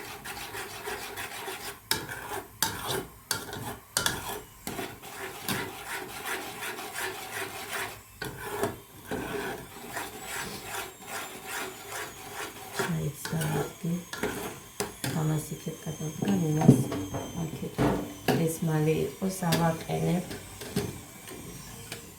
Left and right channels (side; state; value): both; identical; correlation 1.00